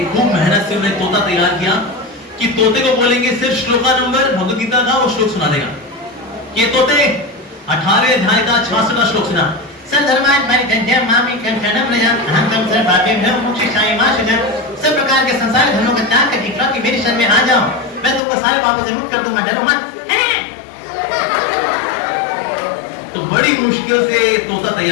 खूब मेहनत से उन्हें तोता तैयार किया कि तोते को बोलेंगे सिर्फ श्लोका नंबर भगवद गीता का वो श्लोक सुना देगा। ये तोते 18वें अध्याय का 66वां श्लोक सुना। सब प्रकार के संसार धर्मों का त्याग करके कि मेरी शरण में आ जाओ, मैं तुमको सारे पापों से मुक्त कर दूंगा, डरो मत। तो बड़ी मुश्किल से तोता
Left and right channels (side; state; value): right; drops out; at 18.2 s